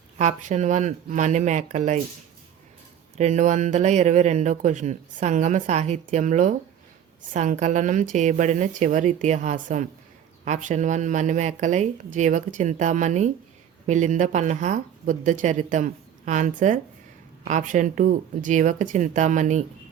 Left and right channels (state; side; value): quieter; left; 9.4 dB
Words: option 1 Manimekalai. 222వ క్వశ్చన్. సంగమ సాహిత్యంలో సంకలనం చేయబడిన చివరి ఇతిహాసం? Option 1 Manimekalai, Jivaka Chintamani, Milinda Panha, Buddha Charitam. Answer option 2 Jivaka Chintamani.